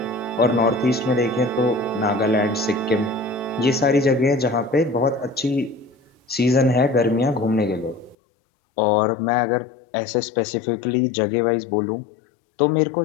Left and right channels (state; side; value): drops out; right; at 8.2 s